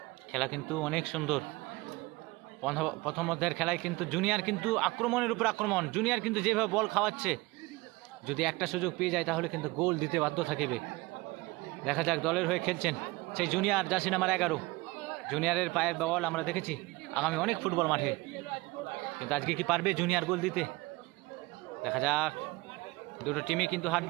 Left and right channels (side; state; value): left; quieter; 22.4 dB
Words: খেলা কিন্তু অনেক সুন্দর। প্রথম অধ্যায়ের খেলায় কিন্তু জুনিয়র কিন্তু আক্রমণের উপর আক্রমণ। জুনিয়র কিন্তু যেভাবে বল খাওয়াচ্ছে, যদি একটা সুযোগ পেয়ে যায় তাহলে কিন্তু গোল দিতে বাধ্য থাকিবে। দেখা যাক, দলের হয়ে খেলছেন সেই জুনিয়র, জার্সি নাম্বার 11। জুনিয়রের পায়ের বল আমরা দেখেছি আগামী অনেক ফুটবল মাঠে, কিন্তু আজকে কি পারবে জুনিয়র গোল দিতে? দেখা যাক। দুটো টিমই কিন্তু